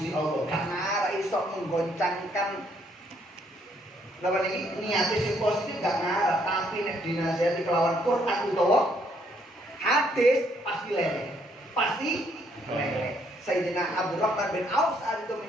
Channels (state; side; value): normal; both; correlation 0.69